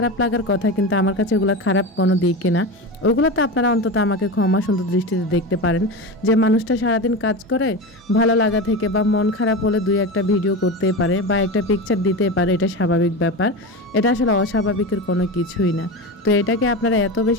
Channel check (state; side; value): normal; both; correlation 0.23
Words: লাগার কথা, কিন্তু আমার কাছে ওগুলো খারাপ কোনো দিকই না। ওগুলো তো আপনারা অন্তত আমাকে ক্ষমা সুন্দর দৃষ্টিতে দেখতে পারেন, যে মানুষটা সারাদিন কাজ করে, ভালো লাগা থেকে বা মন খারাপ হলে দুই একটা ভিডিও করতেই পারে বা একটা পিকচার দিতেই পারে, এটা স্বাভাবিক ব্যাপার। এটা আসলে অস্বাভাবিকের কোনো কিছুই না। তো এটাকে আপনারা এত